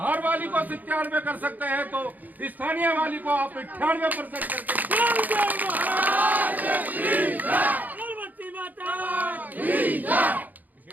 वाली को 97 कर सकते हैं तो स्थानीय वाली को आप 98% करके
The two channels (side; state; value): left; late; 0.082 ms